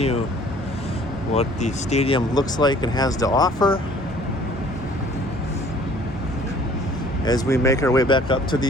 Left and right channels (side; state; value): both; normal; correlation 0.54